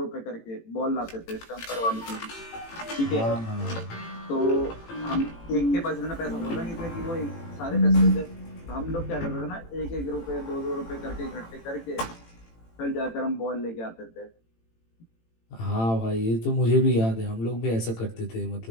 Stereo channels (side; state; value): right; late; 18 ms